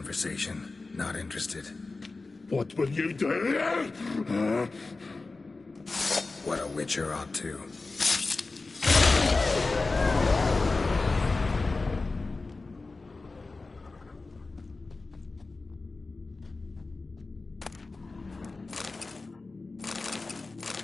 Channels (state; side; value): quieter; right; 3.6 dB